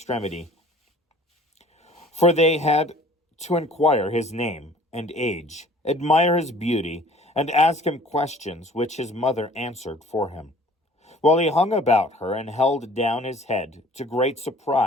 for they had to inquire his name and age, admire his beauty, and ask him questions which his mother answered for him, while he hung about her and held down his head, to great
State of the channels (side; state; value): both; normal; correlation 0.51